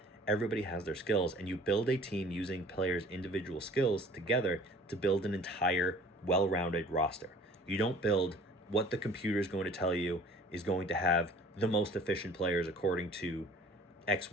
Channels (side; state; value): both; normal; correlation 0.49